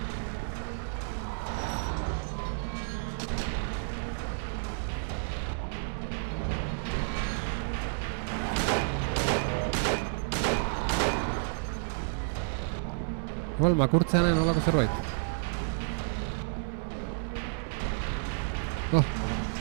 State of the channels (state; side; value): silent; left; 56 dB below the other